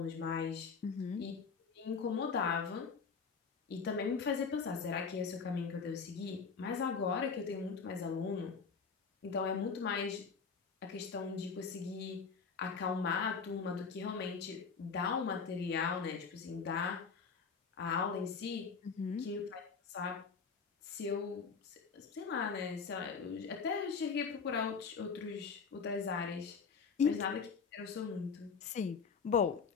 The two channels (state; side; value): quieter; right; 5.5 dB